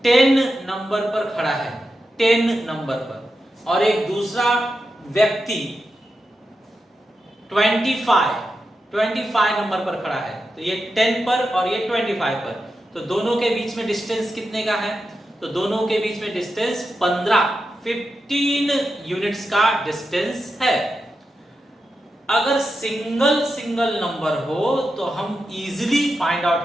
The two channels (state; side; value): normal; both; correlation 0.89